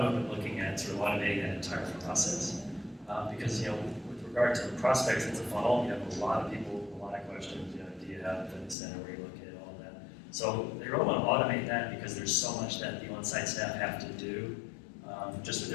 movement looking at sort of automating that entire process. Because, with regard to prospects, it's a funnel. You have a lot of people, a lot of questions. Do you have a fitness center where you located, all of that. So they really want to automate that because there's so much that the on-site staff have to do just with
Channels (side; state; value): right; drops out; at 8.8 s